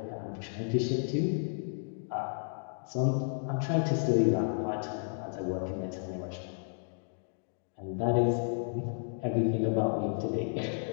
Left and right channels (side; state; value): right; silent; 56 dB below the other